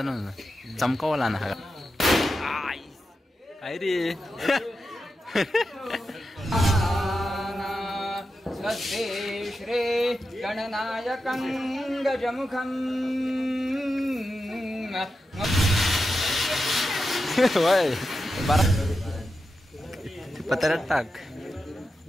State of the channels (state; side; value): normal; both; correlation 0.89